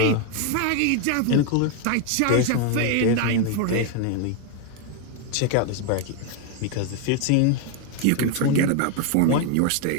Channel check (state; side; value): different; both; correlation 0.01